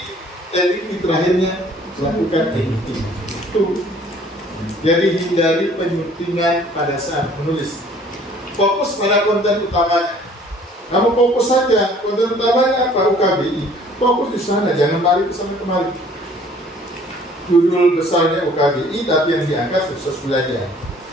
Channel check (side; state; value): both; normal; correlation 0.55